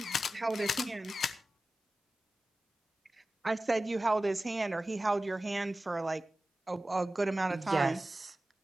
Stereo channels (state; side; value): normal; both; correlation 0.95